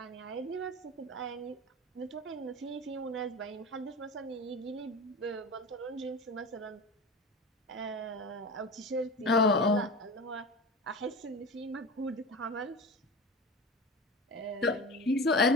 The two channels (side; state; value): both; normal; correlation 0.30